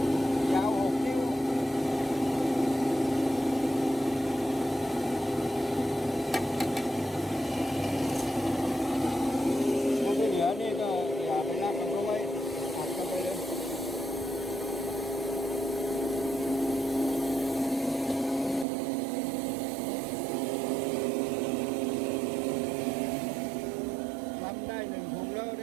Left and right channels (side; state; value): left; drops out; at 18.7 s